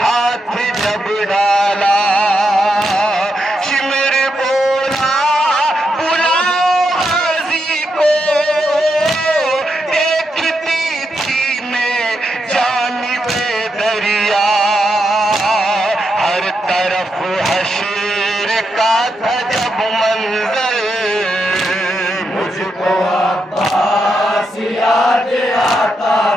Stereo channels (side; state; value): both; normal; correlation 0.83